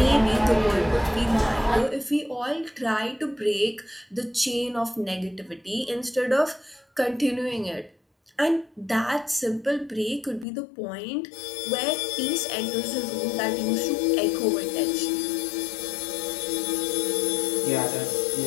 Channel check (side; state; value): right; drops out; at 10.5 s